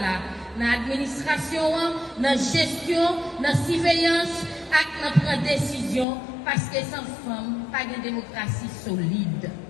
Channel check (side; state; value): right; drops out; at 6.1 s